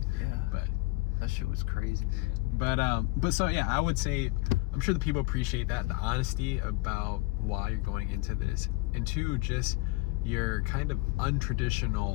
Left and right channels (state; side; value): quieter; right; 20.9 dB